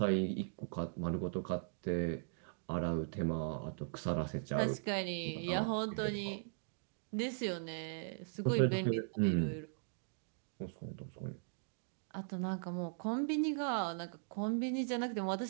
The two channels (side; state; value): left; silent; digital silence